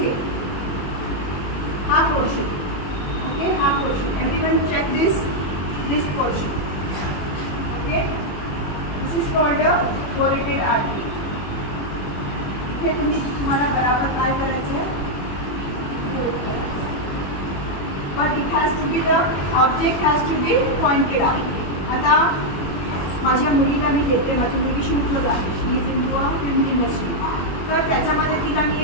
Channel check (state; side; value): late; right; 21 ms